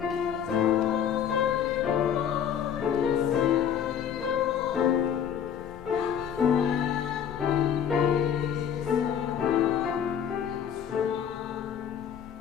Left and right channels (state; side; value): quieter; right; 8.6 dB